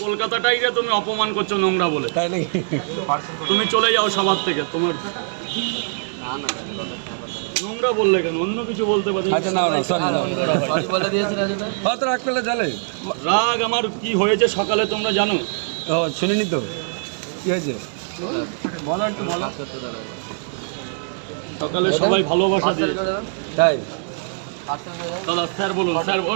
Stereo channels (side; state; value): left; silent; digital silence